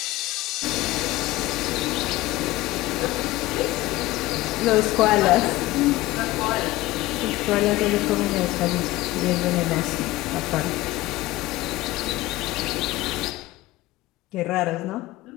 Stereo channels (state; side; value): quieter; right; 18.0 dB